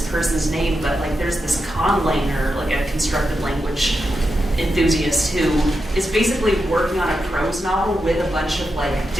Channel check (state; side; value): normal; both; correlation 0.87